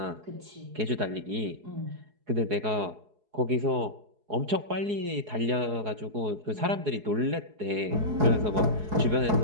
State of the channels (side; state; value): left; late; 4.7 ms